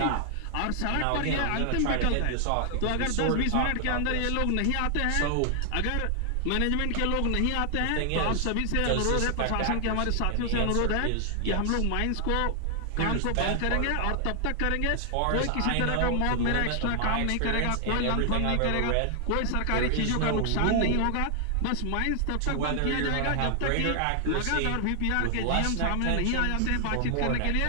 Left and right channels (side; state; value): both; different; correlation 0.00